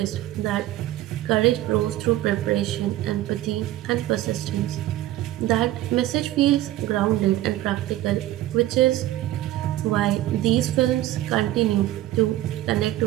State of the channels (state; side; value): quieter; left; 14.9 dB